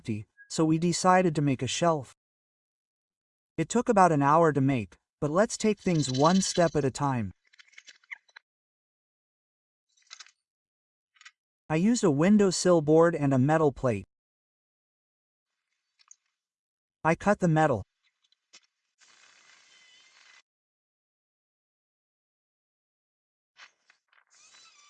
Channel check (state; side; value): identical; both; correlation 1.00